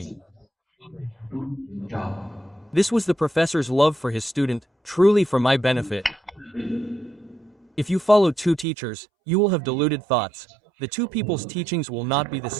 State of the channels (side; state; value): left; drops out; at 8.7 s